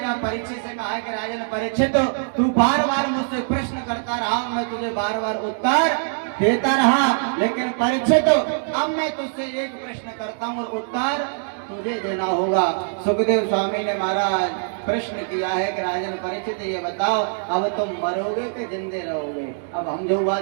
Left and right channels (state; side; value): silent; left; digital silence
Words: परीक्षित से कहा कि राजन परीक्षित, तू बार बार मुझसे प्रश्न करता रहा, मैं तुझे बार बार उत्तर देता रहा, लेकिन परीक्षित अब मैं तुझसे एक प्रश्न करता हूँ और उत्तर तुझे देना होगा। सुखदेव स्वामी ने महाराज प्रश्न किया है कि राजन परीक्षित ये बताओ, अब तुम मरोगे कि जिंदे रहोगे। अब हम जो